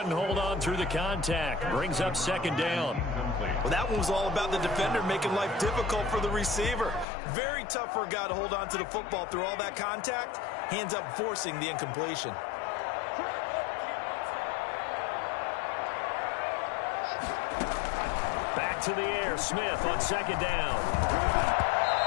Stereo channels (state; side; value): drops out; right; at 7.1 s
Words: hold on through the contact. Brings up 2nd down. Well, that one was all about the defender making life difficult for the receiver. Very tough for a guy to hold on to the football through all that contact. He ends up forcing the incompletion. Back to the air. Smith on 2nd down.